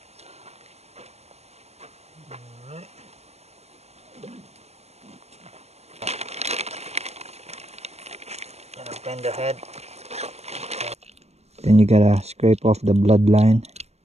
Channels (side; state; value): left; late; 0.31 ms